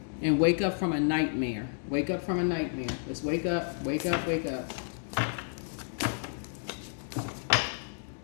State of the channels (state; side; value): silent; right; digital silence